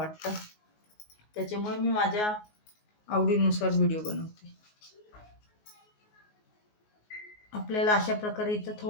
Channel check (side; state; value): right; late; 19 ms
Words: त्याच्यामुळे मी माझ्या आवडीनुसार व्हिडिओ बनवते. आपल्याला अशा प्रकारे इथं